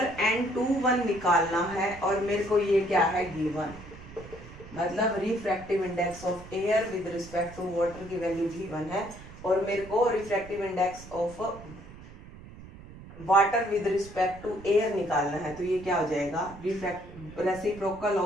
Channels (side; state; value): right; noise; rumble, 17 dB below the sound